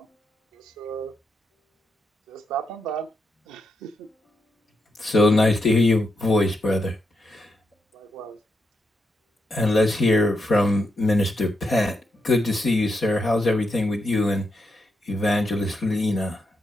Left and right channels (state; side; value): normal; both; correlation 0.83